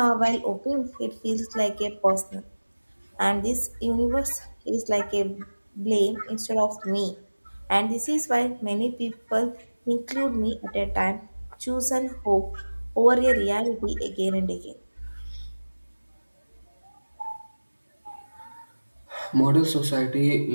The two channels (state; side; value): inverted; both; correlation -1.00